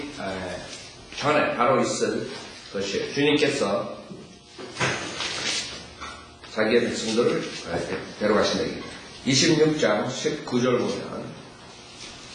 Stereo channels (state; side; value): identical; both; correlation 1.00